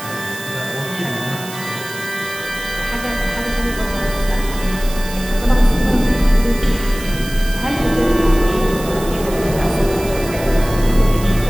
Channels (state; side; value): noise; right; hiss, 13 dB below the sound